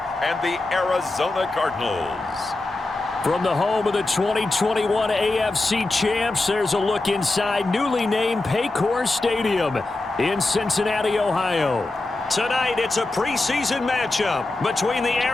the Arizona Cardinals. From the home of the 2021 AFC champs, there's a look inside newly named Paycor Stadium in Cincinnati, Ohio. Tonight, it's a preseason matchup between the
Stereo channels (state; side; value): quieter; right; 3.0 dB